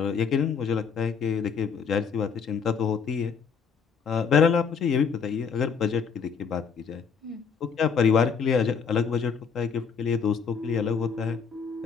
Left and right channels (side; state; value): right; quieter; 6.2 dB